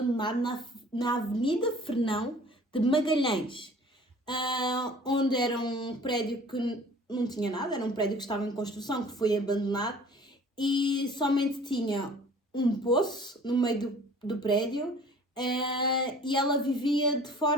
na Avenida Fernão de Magalhães, onde era um prédio que não tinha nada, era um prédio que estava em construção, que foi abandonado e somente tinha um poço no meio do prédio. E ela vivia de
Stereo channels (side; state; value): both; normal; correlation 0.49